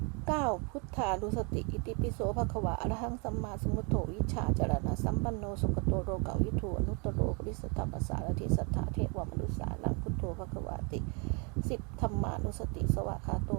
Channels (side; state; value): left; quieter; 33.6 dB